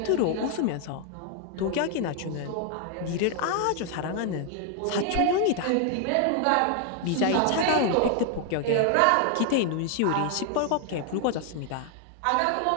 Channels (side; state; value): both; different; correlation 0.00